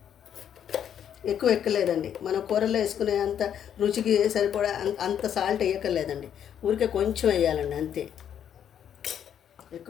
ఎక్కువ ఎక్కలేదండి. మనం కూరలో వేసుకునే అంత రుచికి సరిపడా అంత సాల్ట్ వేయక్కర్లేదండి. ఊరికే కొంచెం వేయాలండి అంతే,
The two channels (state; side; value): quieter; right; 9.2 dB